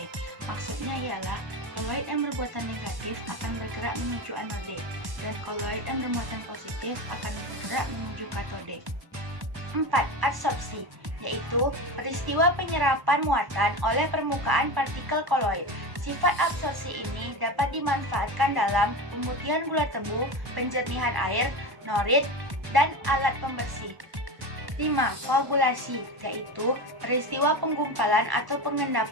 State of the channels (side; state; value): left; late; 1.0 ms